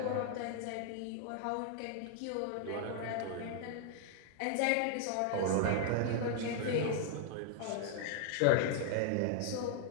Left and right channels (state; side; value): different; both; correlation 0.00